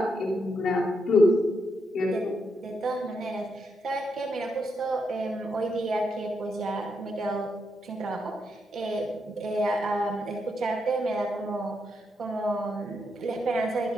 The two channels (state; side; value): normal; both; correlation 0.81